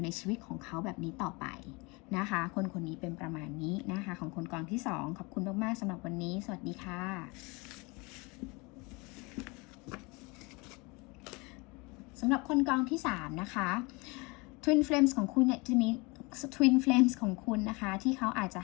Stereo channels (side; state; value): right; quieter; 27.0 dB